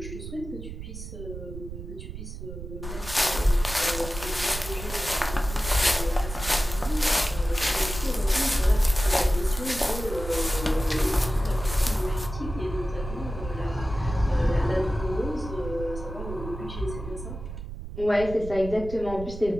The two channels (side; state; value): right; noise; rumble, 9 dB below the sound